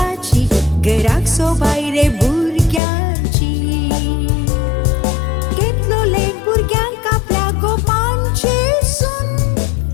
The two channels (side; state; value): right; drops out; at 2.8 s